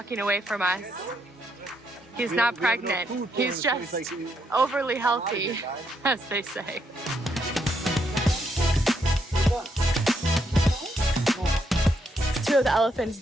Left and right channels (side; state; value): both; normal; correlation 0.77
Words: away from us. He's not pregnant. He's just overly healthy, as they say. Two of the elephants